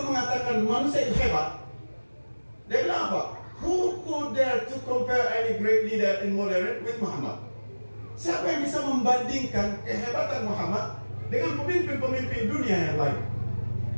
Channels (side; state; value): both; inverted; correlation -1.00